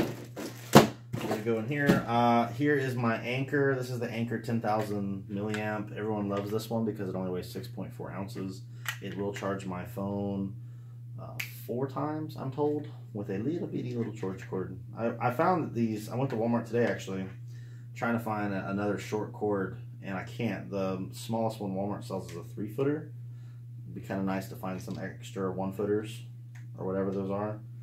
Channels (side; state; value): both; identical; correlation 1.00